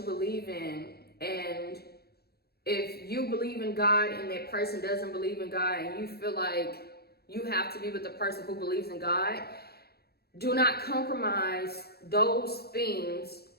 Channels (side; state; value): right; late; 0.46 ms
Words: believe in. And if you believe in God and that person doesn't believe in God, and you feel like you have to be with the person who believes in God, do not compromise those things